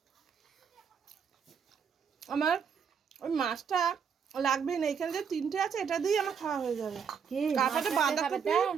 আমার ওই মাছটা লাগবে না, এখানে যে তিনটে আছে এটা দিয়ে আমার খাওয়া হয়ে যাবে। তারপরে বাঁধাকপি,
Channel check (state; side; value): quieter; left; 6.8 dB